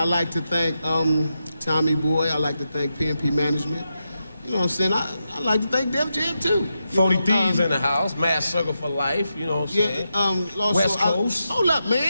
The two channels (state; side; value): inverted; both; correlation -0.87